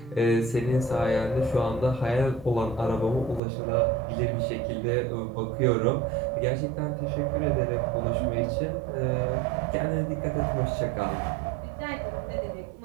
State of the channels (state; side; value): drops out; left; at 3.4 s